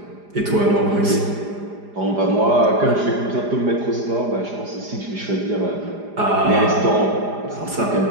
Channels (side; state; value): left; late; 4.9 ms